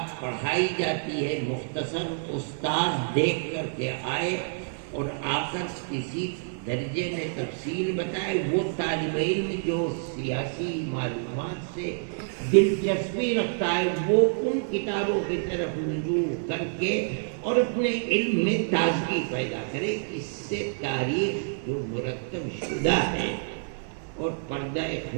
پڑھائی جاتی ہے مختصر استاد دیکھ کر کے آئے اور آ کر کسی درجے میں تفصیل بتائے, وہ طالب علم جو سیاسی معلومات سے دلچسپی رکھتا ہے وہ ان کتابوں کی طرف رجوع کر کے اور اپنے علم میں تازگی پیدا کرے. اس سے تاریخ جو مرتب شدہ ہے اور پردہ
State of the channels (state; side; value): silent; left; 60 dB below the other